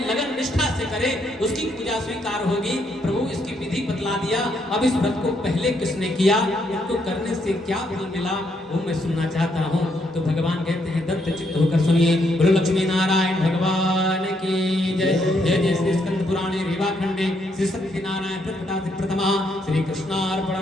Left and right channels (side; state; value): both; normal; correlation 0.74